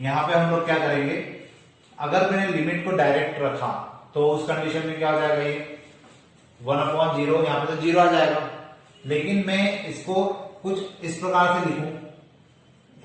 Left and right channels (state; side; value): identical; both; correlation 1.00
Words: पे हम लोग क्या करेंगे, अगर मैंने लिमिट को डायरेक्ट रखा तो उस कंडीशन में क्या हो जाएगा, ये 1/0, यहाँ पे तो 0 आ जाएगा। लेकिन मैं इसको कुछ इस प्रकार से लिखूं,